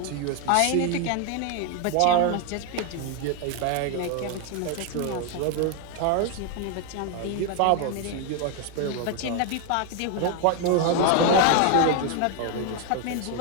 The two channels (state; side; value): different; both; correlation 0.01